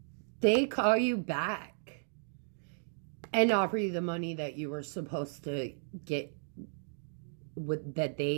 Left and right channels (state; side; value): silent; left; digital silence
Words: they call you back and offer you the money that you were supposed to get, that